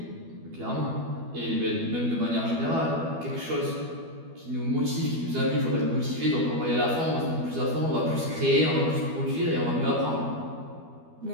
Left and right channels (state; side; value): late; left; 12 ms